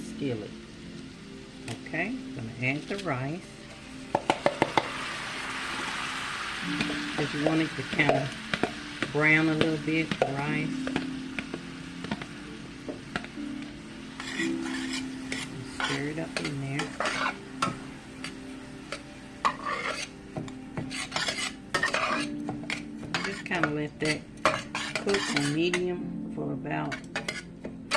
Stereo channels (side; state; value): both; identical; correlation 1.00